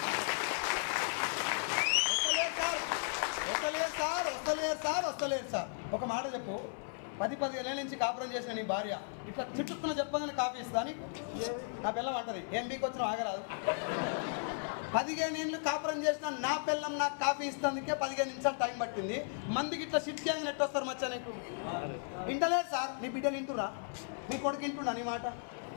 వస్తలేరు సార్. ఒక మాట చెప్పు, 10-15 ఏళ్ళ నుంచి కాపురం చేసిన నీ భార్య ఇట్లా చుట్టుకున్న చెప్పగానే కాఫీ ఇస్తా నీకు? నా పిల్లం అంటది, ఏం బీకి వచ్చినా ఆగరాదు. 15 ఏళ్ళు కాపురం చేసిన నా పిల్లం నాకు కాఫీ ఇస్తానికే 15 నిమిషాలు టైం పట్టింది. మందికి ఇట్లా షిట్ గ్యాంగ్ నెట్ వస్తారు మచ్చా నీకు? వింటలేదు సార్. నీ బిడ్డలు వింటురా? నీ కొడుకు వింటున్నా నీ మాట?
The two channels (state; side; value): silent; right; 54 dB below the other